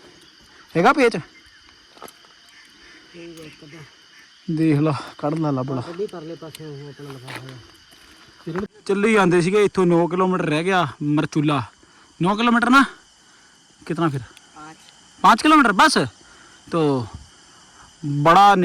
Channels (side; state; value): both; identical; correlation 1.00